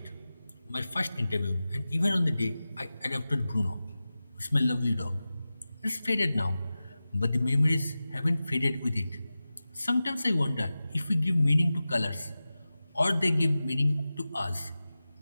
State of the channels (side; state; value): both; inverted; correlation -0.95